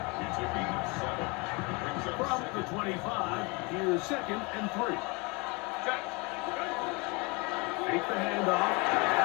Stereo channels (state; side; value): quieter; right; 28.4 dB